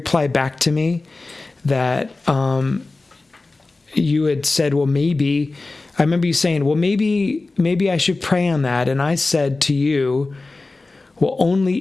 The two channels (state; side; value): quieter; right; 3.4 dB